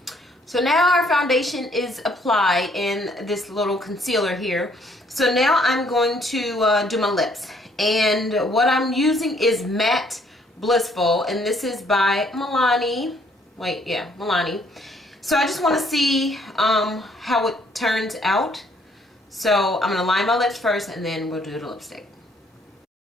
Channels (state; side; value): normal; both; correlation 0.65